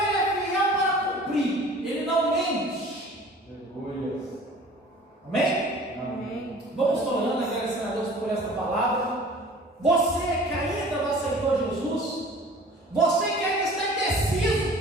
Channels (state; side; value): normal; both; correlation 0.46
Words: Ele é fiel para cumprir. Ele não mente. Aleluia. Amém? Amém. Vamos orando, agradecendo a Deus por essa palavra. Você que ainda não aceitou Jesus, você que ainda está indeciso,